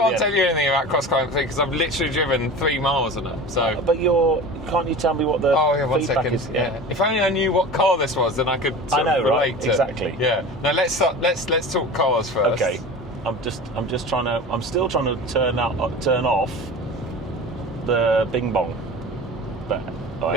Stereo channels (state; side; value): normal; both; correlation 0.34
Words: the tell end. you anything about Cross Climate 3 because I've literally driven 3 miles on it. So. But can't you tell me what the one feedback second. is? Yeah. If only I knew what car this was, then I could sort of relate to. Exactly. Yeah. Now let's talk cars first. Okay. I'm still trying to turn off the bing bong. But